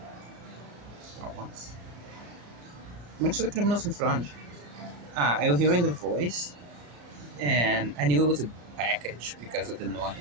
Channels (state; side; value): late; left; 34 ms